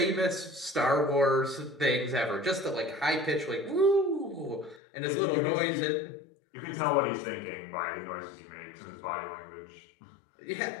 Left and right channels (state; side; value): drops out; right; at 4.8 s